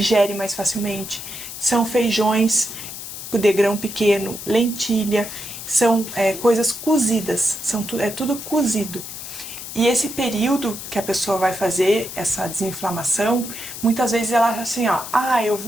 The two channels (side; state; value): left; noise; hiss, 10 dB below the sound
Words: mais facilmente. São feijões de grão pequeno, lentilha, são coisas cozidas, é tudo cozido. E esse período que a pessoa vai fazer essa desinflamação, muitas vezes ela acha assim, eu